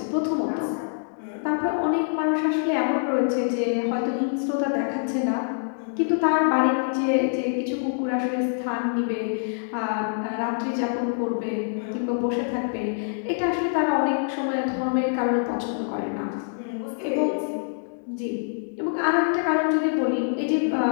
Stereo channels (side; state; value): right; silent; digital silence